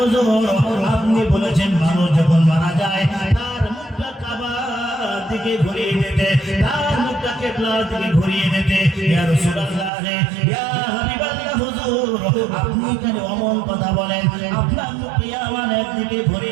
আপনি বলেছেন মানুষ যখন মারা যায় তার মুখটা কাবার দিকে ঘুরিয়ে দিতে, তার মুখটা কিবলার দিকে ঘুরিয়ে দিতে। ইয়া রাসূলুল্লাহ, ইয়া হাবিবাল্লাহ, হুজুর, আপনি কেন অমন কথা বলেন? আপনার মুখ ইয়ামানের দিকে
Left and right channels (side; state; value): left; drops out; at 9.9 s